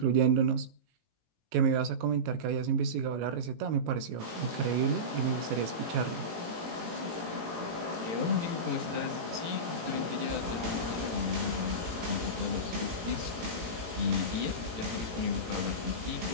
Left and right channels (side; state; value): left; late; 18 ms